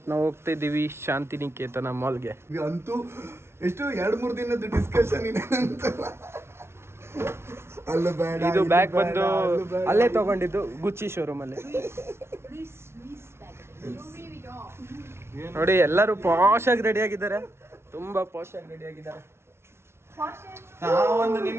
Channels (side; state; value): left; late; 0.12 ms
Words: ನಾವು ಹೋಗ್ತಾ ಇದ್ದೀವಿ ಶಾಂತಿನಿಕೇತನ ಮಾಲ್ಗೆ. ಅಂತೂ ಎಷ್ಟು 2-3 ದಿನದ ಡಿಸ್ಕಷನ್ ಇದೆ ಅಂತ. ಅಲ್ಲ ಬೇಡ, ಇದು ಬ್ಯಾಗ್ ಬಂದು ಅಲ್ಲೇ ತಗೊಂಡಿದ್ದು, ಗುಚ್ಚಿ ಶೋರೂಮ್ ಅಲ್ಲಿ. ನೋಡಿ ಎಲ್ಲರೂ ಪಾಶ್ ಆಗಿ ರೆಡಿ ಆಗಿದ್ದಾರೆ, ತುಂಬಾ ಪಾಶ್ ಆಗಿ ರೆಡಿ ಆಗಿದ್ದಾರೆ. ನಾವೊಂದು